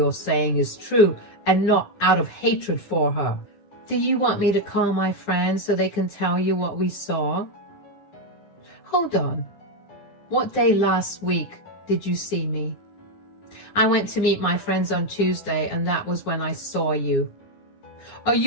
saying is true and not out of hatred for her." "Do you want me to call my friends so they can tell you what we saw?" "Hold on. What day last week did you see me?" "I went to meet my friends on Tuesday, and that was when I saw you." "Are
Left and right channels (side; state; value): right; late; 9.4 ms